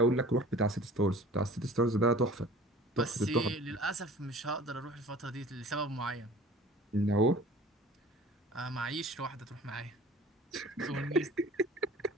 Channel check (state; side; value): normal; both; correlation 0.45